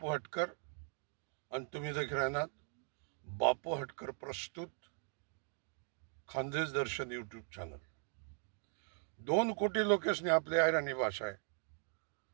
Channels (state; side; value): silent; left; 51 dB below the other